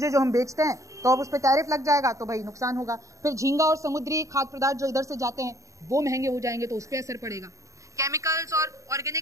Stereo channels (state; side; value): late; left; 0.15 ms